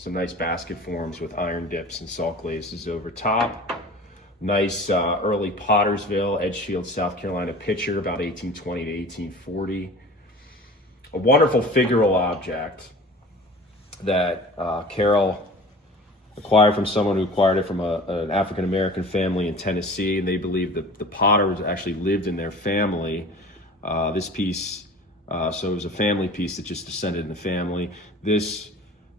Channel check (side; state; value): both; normal; correlation 0.41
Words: nice basket forms with iron dips and salt glazes over top. Nice early Pottersville, Edgefield, South Carolina pitcher, about 1820 to 1840. A wonderful figural object that Carole acquired from someone who acquired it from an African-American family in Tennessee, and they believe that the potter actually lived in their family. This piece, so it was a family piece that just descended in the family. This